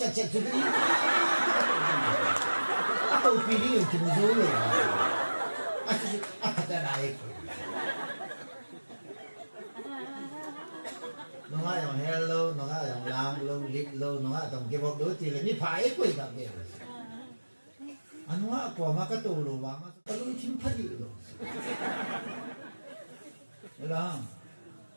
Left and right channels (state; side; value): inverted; both; correlation -1.00